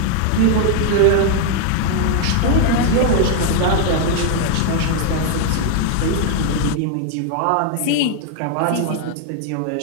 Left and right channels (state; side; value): different; both; correlation 0.00